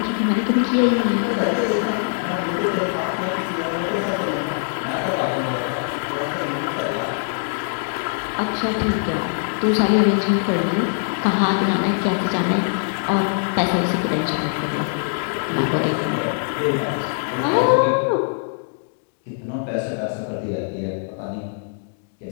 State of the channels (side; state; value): right; silent; digital silence